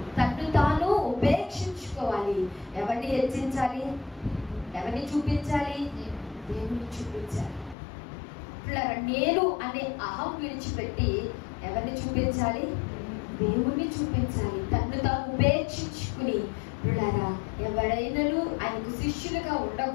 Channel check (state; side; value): drops out; right; at 7.8 s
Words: తన్ను తాను ఉపేక్షించుకోవాలి. ఎవరిని హెచ్చించాలి? ఎవరిని చూపించాలి? దేవుని చూపించాలి. నేను అనే అహం విడిచిపెట్టి ఎవరిని చూపించాలి? దేవుణ్ణి చూపించాలి. తన్ను తాను ఉపేక్షించుకుని ఎవరైనాను ఆయనకు శిష్యులుగా